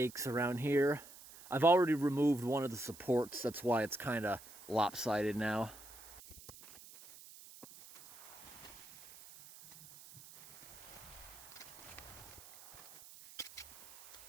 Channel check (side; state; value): right; noise; hiss, 18 dB below the sound